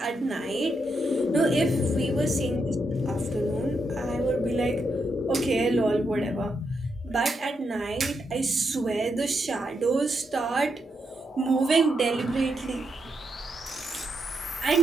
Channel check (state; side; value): normal; both; correlation 0.82